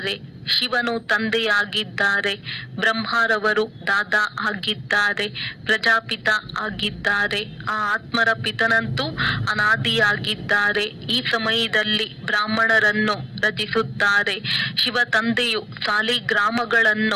ಶಿವನು ತಂದೆಯಾಗಿದ್ದಾರೆ, ಬ್ರಹ್ಮರವರು ದಾದಾ ಆಗಿದ್ದಾರೆ, ಪ್ರಜಾಪಿತ ಆಗಿದ್ದಾರೆ. ಆ ಆತ್ಮರ ಪಿತನಂತೂ ಅನಾದಿಯಾಗಿದ್ದಾರೆ. ಈ ಸಮಯದಲ್ಲಿ ಬ್ರಾಹ್ಮಣರನ್ನು ರಚಿಸುತ್ತಾರೆ. ಶಿವ ತಂದೆಯು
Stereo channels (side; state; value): both; identical; correlation 1.00